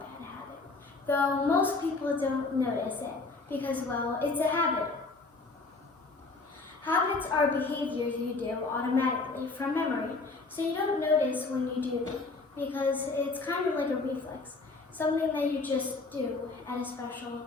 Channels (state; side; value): quieter; right; 3.7 dB